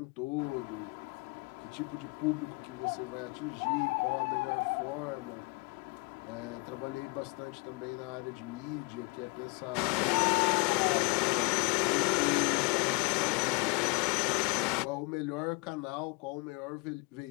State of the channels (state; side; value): quieter; right; 29.3 dB